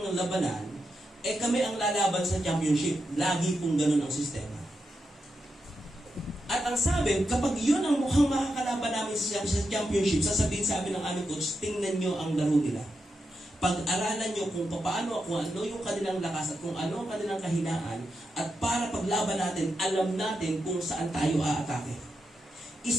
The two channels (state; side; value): normal; both; correlation 0.86